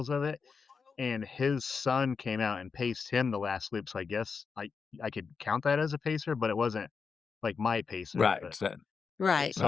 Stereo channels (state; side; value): quieter; right; 5.4 dB